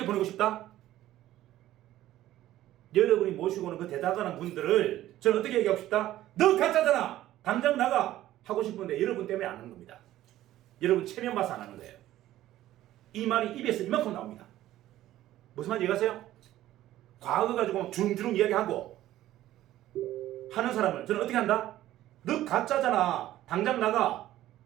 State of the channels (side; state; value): left; quieter; 14.2 dB